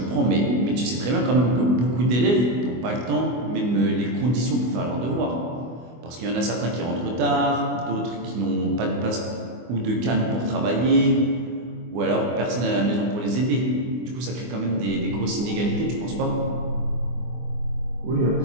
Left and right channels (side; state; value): left; late; 24 ms